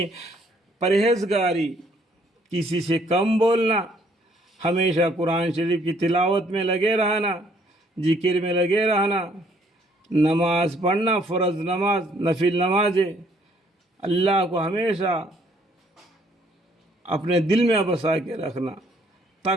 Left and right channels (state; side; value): normal; both; correlation 0.65